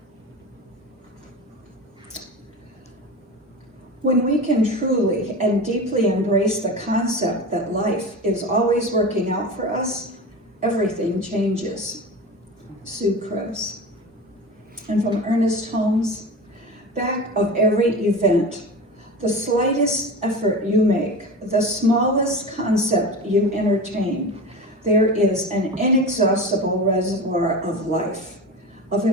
When we can truly and deeply embrace the concept that life is always working out for us, everything changes. Sue Krebs. And from Ernest Holmes, back of every event, the slightest effort you make, the smallest concept you entertain, there is an inexhaustible reservoir of life, of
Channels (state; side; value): normal; both; correlation 0.29